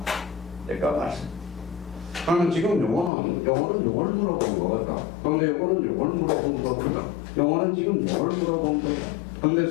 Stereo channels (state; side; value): drops out; right; at 3.1 s